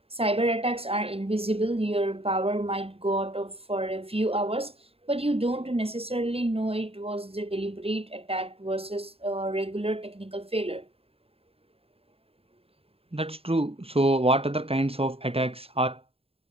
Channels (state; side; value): late; left; 0.28 ms